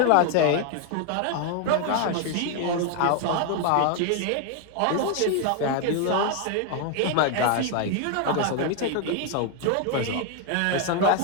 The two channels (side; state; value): both; different; correlation 0.01